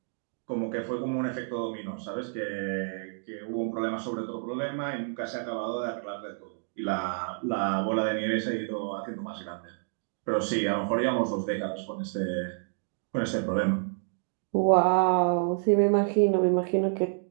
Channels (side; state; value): left; silent; digital silence